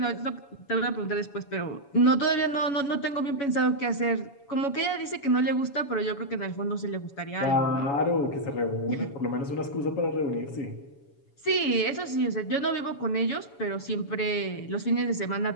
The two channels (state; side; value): late; right; 7.1 ms